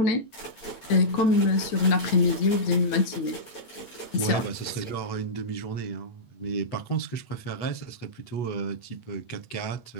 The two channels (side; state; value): right; late; 9.0 ms